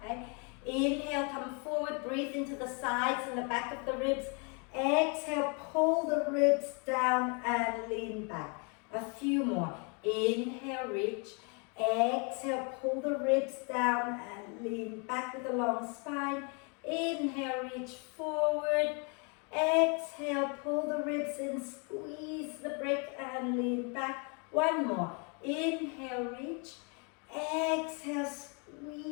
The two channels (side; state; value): right; quieter; 35.3 dB